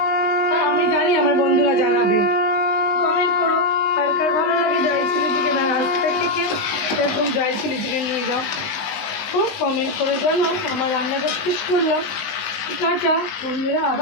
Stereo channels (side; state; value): right; late; 19 ms